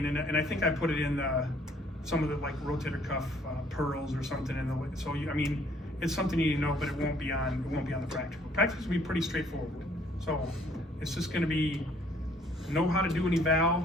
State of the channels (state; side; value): normal; both; correlation 0.61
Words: and I think I put it in some of the like rotator cuff pearls or something in the. So I mean, it's something you need to know, but it won't be on the practical. Practice will be pretty straightforward. So it's just going to be know how to do an